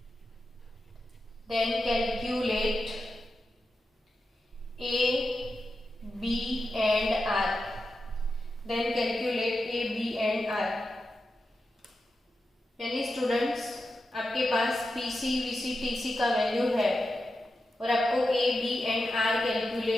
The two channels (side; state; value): both; normal; correlation 0.90